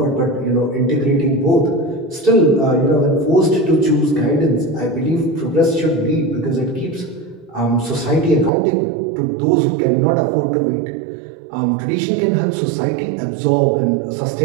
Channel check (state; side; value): drops out; left; at 8.5 s